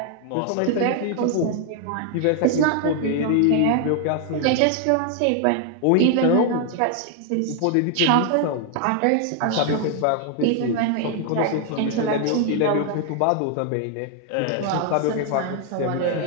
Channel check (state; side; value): different; both; correlation 0.00